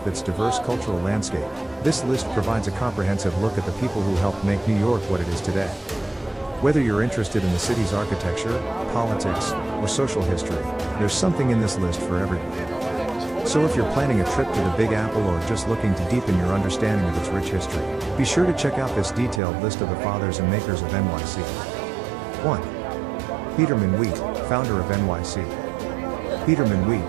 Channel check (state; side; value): drops out; left; at 19.4 s